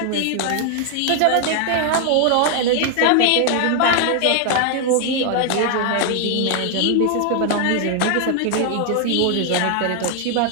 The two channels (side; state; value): both; different; correlation 0.00